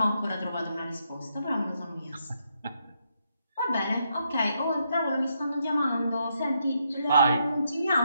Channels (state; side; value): inverted; both; correlation -0.78